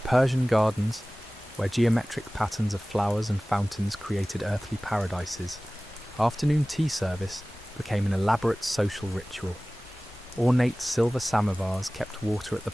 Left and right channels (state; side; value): normal; both; correlation 0.98